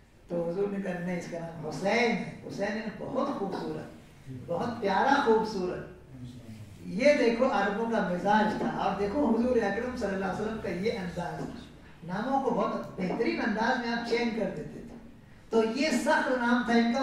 تو حضور نے کہا نہیں، اس کا نام حسین ہے، حسین ہے بہت خوبصورت، بہت پیارا خوبصورت۔ یہ دیکھو عربوں کا مزاج تھا، اور دیکھو حضور اکرم صلی اللہ علیہ وسلم کا یہ انداز تھا، ناموں کو بہت بہترین انداز میں آپ چینج کر دیتے تھے۔ تو یہ سخت نام تھا ان کا،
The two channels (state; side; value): identical; both; correlation 1.00